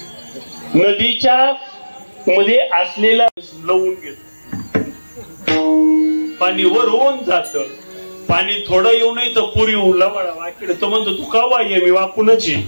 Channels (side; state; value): both; inverted; correlation -1.00